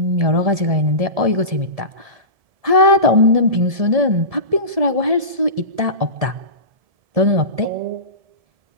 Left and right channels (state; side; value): late; left; 1.7 ms